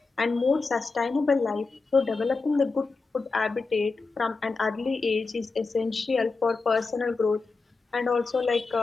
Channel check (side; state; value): right; quieter; 4.1 dB